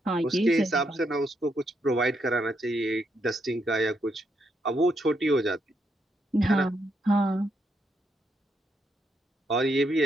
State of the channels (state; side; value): normal; both; correlation 0.78